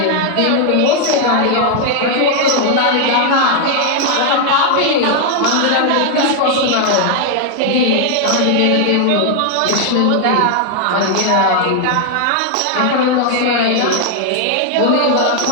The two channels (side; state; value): both; different; correlation 0.00